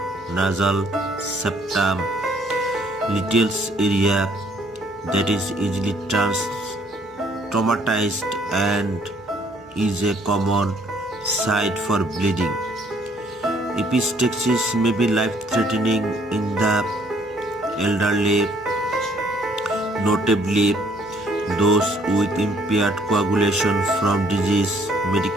nasal septum, Little's area, that is easily traumatized and is a common site for bleeding. Epistaxis may be life-threatening in the elderly, notably those with impaired coagulation from disease,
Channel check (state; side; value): normal; both; correlation 0.64